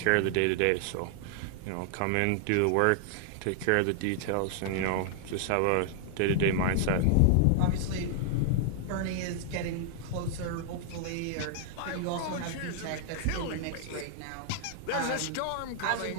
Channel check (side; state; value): both; different; correlation 0.00